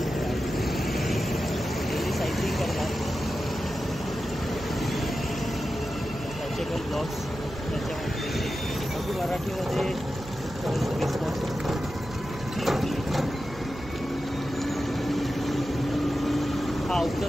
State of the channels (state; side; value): noise; right; hum, 15 dB below the sound